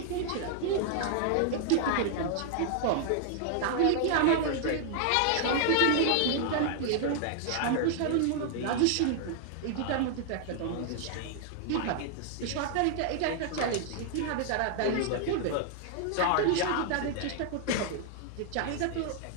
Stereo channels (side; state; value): both; different; correlation 0.00